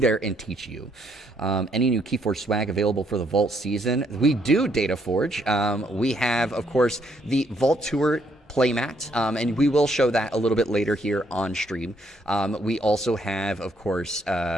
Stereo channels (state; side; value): normal; both; correlation 0.71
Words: and teach you. Any new KeyForge swag available for the Vault season? We do, DataForge. We have, of course, the Vault Tour playmat, and we will show that a little bit later here on stream. We also have, of course,